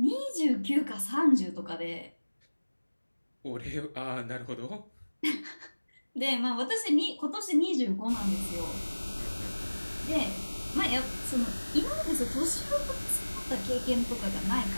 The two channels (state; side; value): inverted; both; correlation -1.00